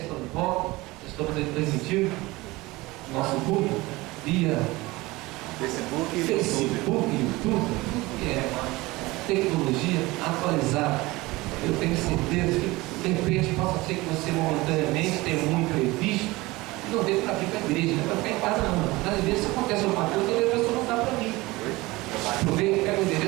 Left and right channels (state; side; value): quieter; left; 21.1 dB